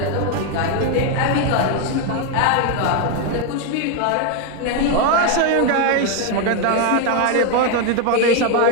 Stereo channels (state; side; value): different; both; correlation 0.01